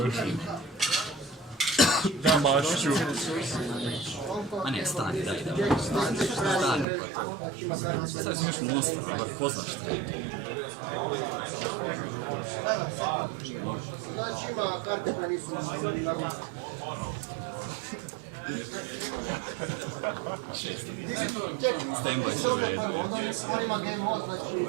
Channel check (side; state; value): left; drops out; at 6.9 s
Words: Da, Mašiću. A ne, stani, daj. Stani, pa to. Sad sam još monster, bar poznaš šta je. Znači ima karte koje nisu Stand-by se u redu. on ima game mode, znači...